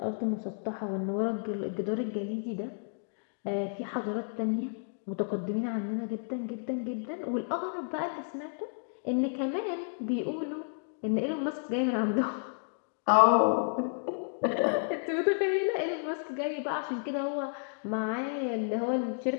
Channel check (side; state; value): right; silent; digital silence